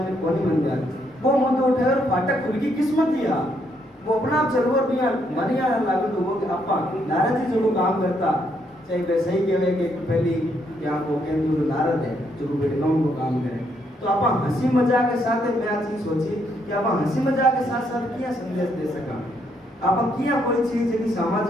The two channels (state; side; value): normal; both; correlation 0.74